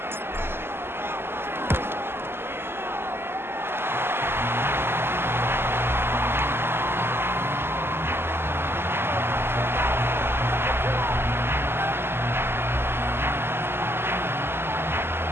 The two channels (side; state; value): left; late; 0.11 ms